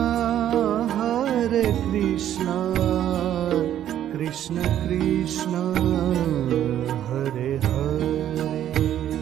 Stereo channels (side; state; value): left; quieter; 11.2 dB